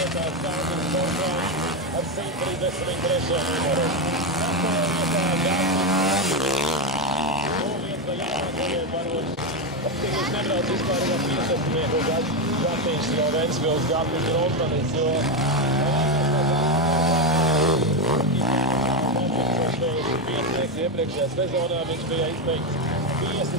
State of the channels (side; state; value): both; normal; correlation 0.09